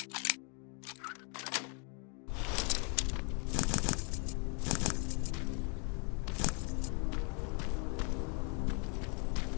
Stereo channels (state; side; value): quieter; right; 37.4 dB